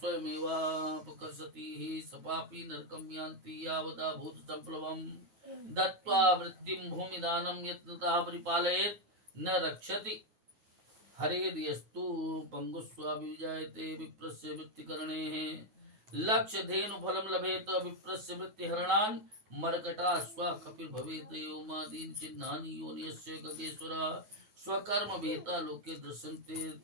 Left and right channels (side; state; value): left; late; 9.3 ms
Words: सपापि नरकं यान्ति यावदा भूत संप्लवम् दत्त्वा वृत्तिं भूमिदानं यत्नतः परिपालयेत् न रक्षति हरेर्यस्तु पंगुस्वाभिजायते विप्रस्य वृत्तिकरणेः लक्ष्य धेनु फलं लभेत विप्रस्य वृत्तिहरणान् मर्कटा स्वा कपिल भवेत योमादीन चिन्हानि योनियस्य गगेश्वरा स्वकर्म भेता लोके